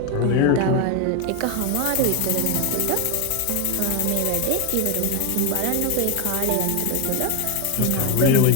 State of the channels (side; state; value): both; different; correlation 0.01